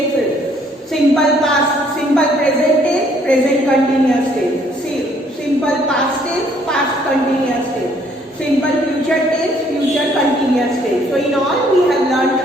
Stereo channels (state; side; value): normal; both; correlation 0.64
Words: Simple past, simple present tense, present continuous tense. Simple past tense, past continuous tense. Simple future tense, future continuous tense. So in all we have learned